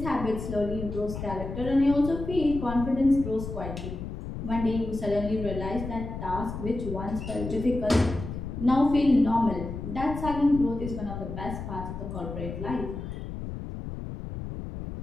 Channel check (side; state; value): left; noise; rumble, 7 dB below the sound